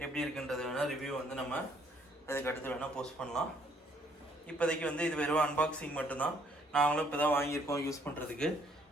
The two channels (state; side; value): normal; both; correlation 0.65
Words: எப்படி இருக்குன்றது வேணால் ரிவ்யூ வந்து நம்ம அதுக்கு அடுத்து வேணால் போஸ்ட் பண்ணலாம். இப்போதைக்கு வந்து இது வெறும் அன்பாக்சிங் மட்டும்தான். நாங்களும் இப்போ தான் வாங்கியிருக்கோம் யூஸ் பண்ணுறதுக்கு.